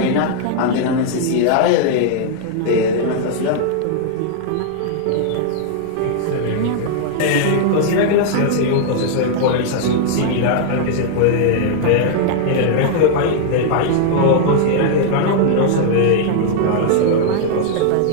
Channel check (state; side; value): different; both; correlation 0.00